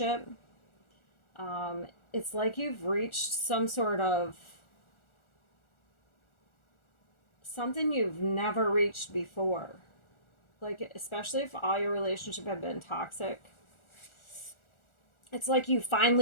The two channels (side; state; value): right; late; 1.4 ms